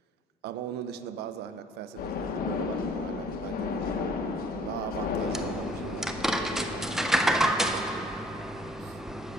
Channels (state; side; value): normal; both; correlation 0.57